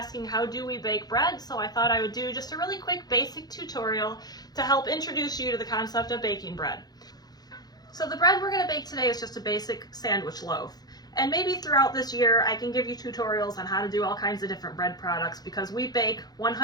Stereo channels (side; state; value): right; late; 0.19 ms